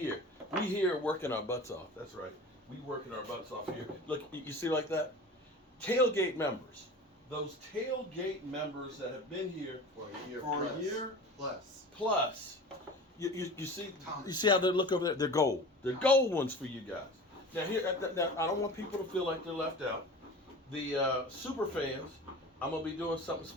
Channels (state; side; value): normal; both; correlation 0.36